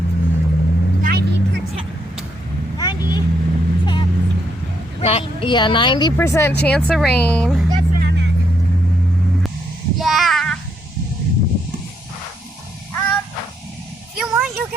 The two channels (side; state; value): both; normal; correlation 0.76